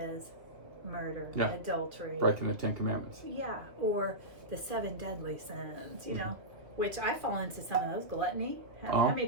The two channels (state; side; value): late; left; 2.4 ms